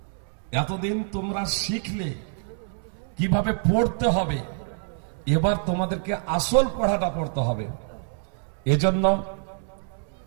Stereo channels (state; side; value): silent; left; 57 dB below the other